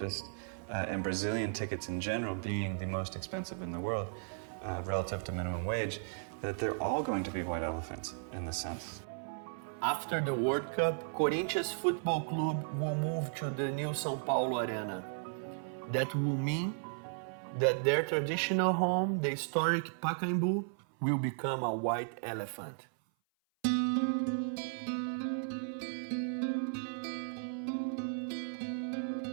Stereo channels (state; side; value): silent; left; 54 dB below the other